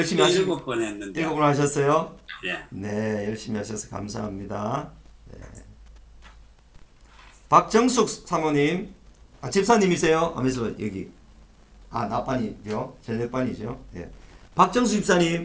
하시고 7번 했는데. 7분 하셨어요? 예. 네, 열심히 하셔서 감사합니다. 네. 박정숙 사모님, 집사님이세요? 하면서 여기 나반이죠, 저녁반이죠. 네. 박정숙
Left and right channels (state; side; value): identical; both; correlation 1.00